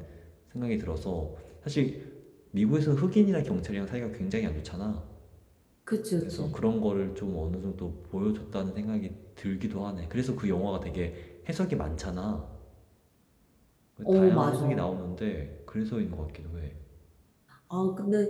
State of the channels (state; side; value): identical; both; correlation 1.00